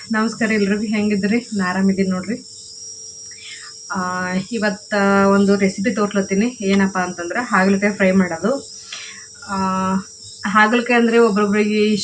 ನಮಸ್ಕಾರ. ಎಲ್ರಿಗೂ ಹೆಂಗಿದ್ರಿ? ನಾನು ಆರಾಮಿದ್ದೀನಿ ನೋಡ್ರಿ. ಇವತ್ತು ಒಂದು ರೆಸಿಪಿ ತೋರ್ಲತ್ತೀನಿ. ಏನಪ್ಪ ಅಂತಂದ್ರೆ ಹಾಗಲಕಾಯಿ ಫ್ರೈ ಮಾಡೋದು. ಹಾಗಲಕಾಯಿ ಅಂದರೆ ಒಬ್ರೊಬ್ರಿಗೆ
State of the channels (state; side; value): identical; both; correlation 1.00